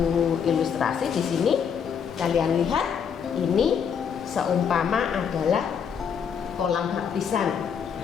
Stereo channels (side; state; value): right; quieter; 7.3 dB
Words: ilustrasi di sini. Kalian lihat, ini seumpama adalah kolam baptisan.